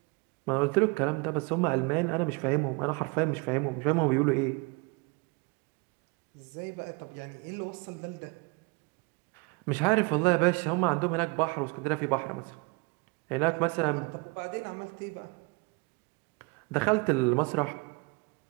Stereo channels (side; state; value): left; quieter; 29.6 dB